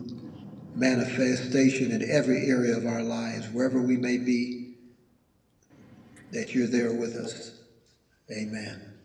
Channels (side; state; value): both; identical; correlation 1.00